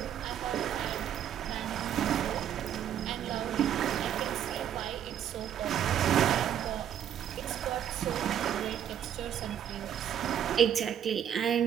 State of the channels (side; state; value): left; quieter; 9.7 dB